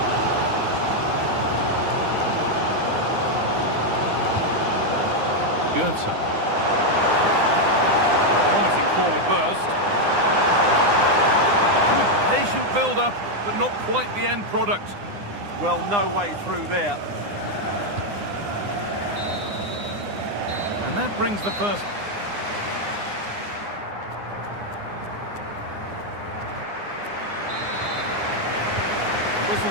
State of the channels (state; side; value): late; left; 9.8 ms